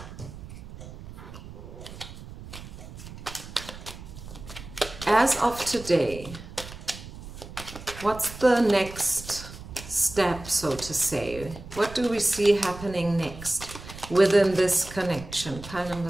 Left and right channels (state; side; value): noise; right; rumble, 14 dB below the sound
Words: As of today, what's the next step, so to say? What do we see happening next within this connection? Pile